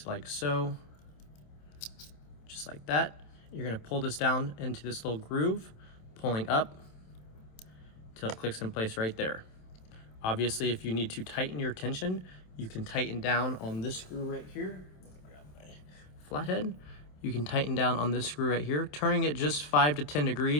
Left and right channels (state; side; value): late; right; 27 ms